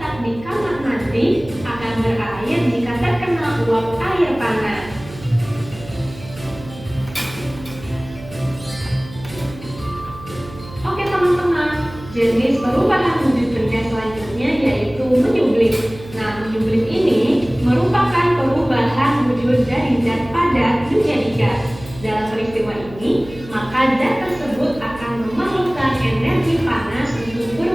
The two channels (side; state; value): right; noise; hum, 16 dB below the sound